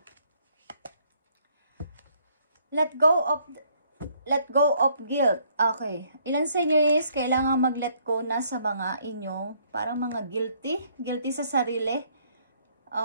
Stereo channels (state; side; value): inverted; both; correlation -0.66